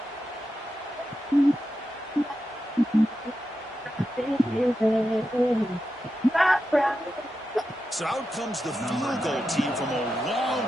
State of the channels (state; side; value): normal; both; correlation 0.89